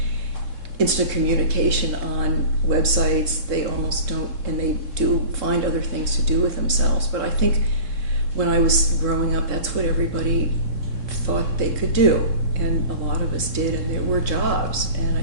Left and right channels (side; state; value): left; late; 3.7 ms